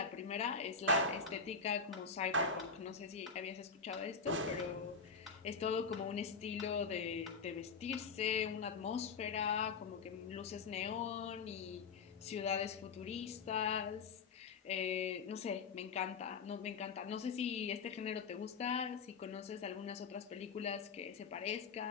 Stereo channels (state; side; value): quieter; right; 5.1 dB